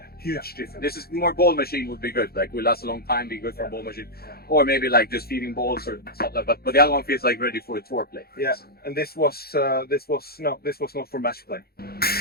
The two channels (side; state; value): right; late; 0.45 ms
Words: huge difference. This is more ball machine would be good, like will last a long time, be good for a ball machine. Or maybe like just feeding balls or something like that. But the other one feels like ready for a tour play. Yeah, and this was not for match play.